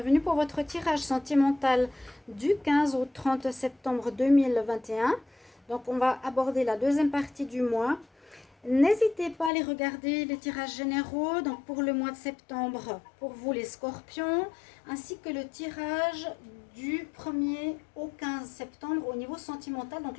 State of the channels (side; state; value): right; drops out; at 9.5 s